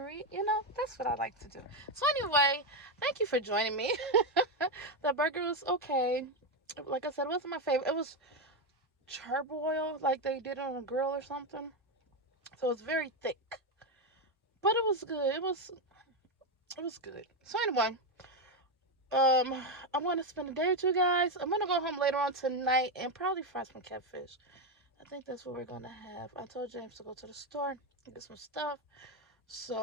That's what I like to do. So anyway, thank you for joining me. The burger was okay. Like I said, it wasn't my favorite. It was charbroil, like they did on a grill or something. So it's very thick. But it was good. It was good. So anyway, I want to spend the day with you guys. I'm going to go home later on tonight and probably fry some catfish. I think that's what we're going to have. I told James to go to the store and get some stuff.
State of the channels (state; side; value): normal; both; correlation 0.08